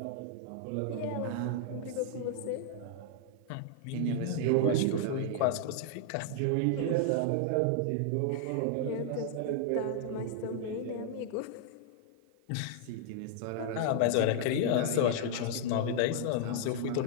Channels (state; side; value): different; both; correlation -0.01